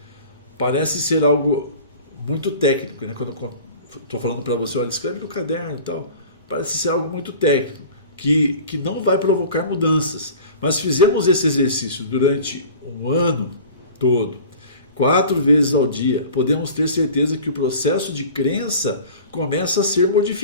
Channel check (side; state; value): both; inverted; correlation -0.41